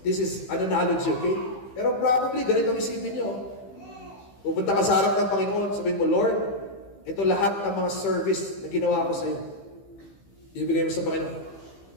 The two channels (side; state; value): right; late; 15 ms